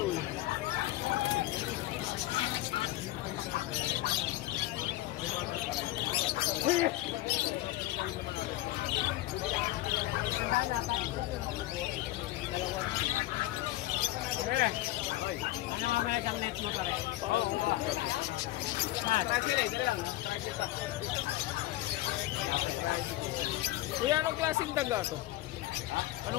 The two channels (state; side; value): quieter; right; 16.5 dB